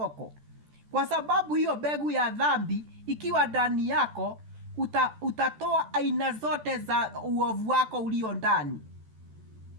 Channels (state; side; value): late; left; 14 ms